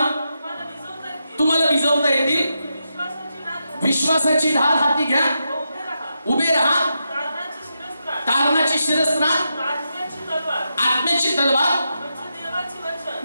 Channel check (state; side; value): inverted; both; correlation -0.86